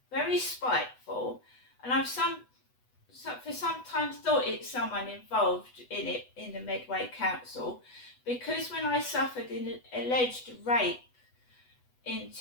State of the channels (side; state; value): right; late; 8.1 ms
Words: very spiteful, and I've for sometimes thought it's someone involved in it, in the Medway Council, because when I suffered an alleged rape in